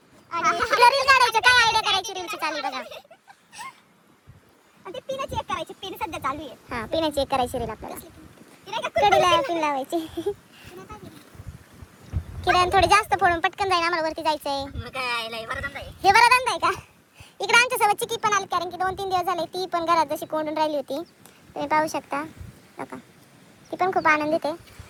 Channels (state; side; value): identical; both; correlation 1.00